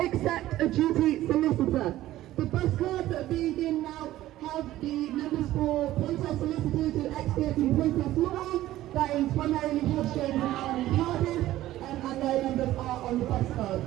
a duty solicitor. The bus cards that are being given now have the numbers for protest solicitors who are experts in protest law. That is primarily Churchill and Cardiff, and their numbers are on the bus card.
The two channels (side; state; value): left; quieter; 14.8 dB